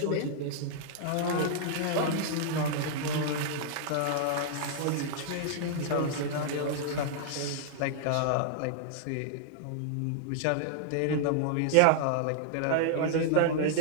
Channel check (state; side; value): different; both; correlation -0.01